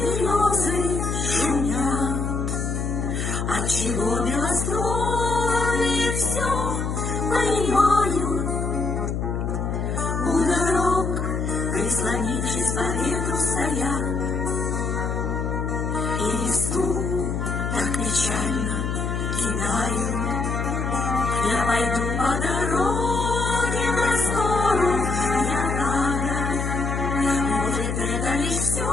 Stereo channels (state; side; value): noise; left; hum, 1 dB below the sound